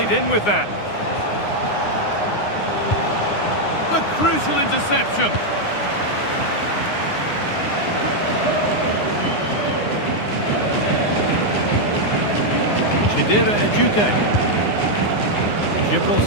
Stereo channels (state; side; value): late; right; 9.7 ms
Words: in with that. A crucial interception. Chidera Ejuke. Gibril